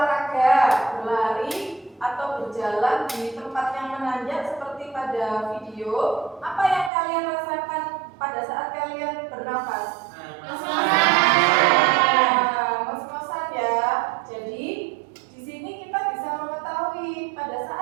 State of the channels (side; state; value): left; drops out; at 6.9 s